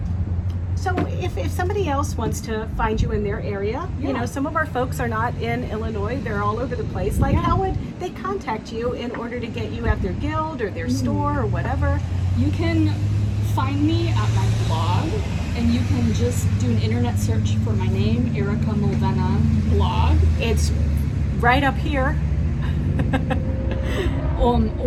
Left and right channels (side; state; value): both; identical; correlation 1.00